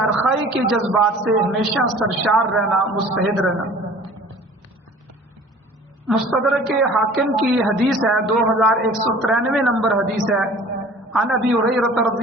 کے جذبات سے ہمیشہ سرشار رہنا، مستعد رہنا۔ مستدرک حاکم کی حدیث ہے، 2193 نمبر حدیث ہے، عن ابی ہریرہ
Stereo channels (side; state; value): both; normal; correlation 0.47